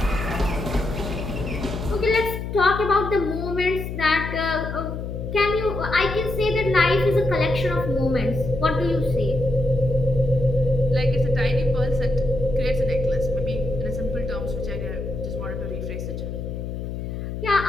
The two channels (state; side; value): noise; left; hum, 6 dB below the sound